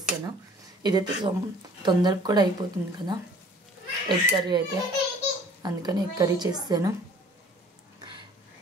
ఇదైతే తొందరగా కూడా అయిపోతుంది కదా ఎగ్ కర్రీ అయితే, అందుకని ఎగ్ కర్రీ చేస్తాను.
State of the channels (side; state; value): both; normal; correlation 0.52